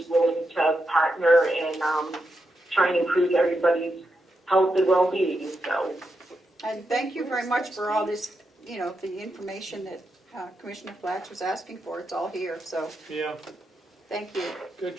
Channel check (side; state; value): both; normal; correlation 0.85